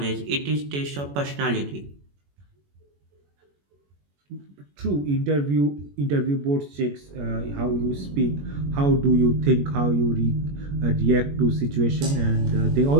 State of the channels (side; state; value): left; late; 21 ms